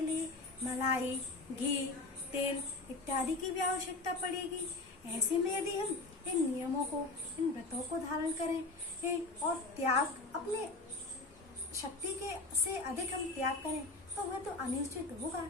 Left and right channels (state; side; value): quieter; right; 3.3 dB